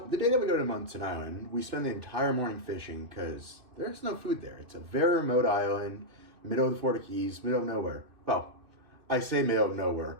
the day that we go to Munson Island, we spend the entire morning fishing because there's no food there. It's a very remote island, middle of the Florida Keys, middle of nowhere. Well, I say middle of nowhere.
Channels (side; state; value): left; late; 2.6 ms